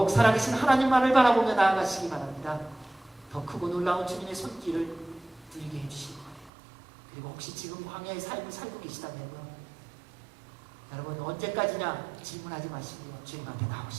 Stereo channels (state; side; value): drops out; left; at 6.5 s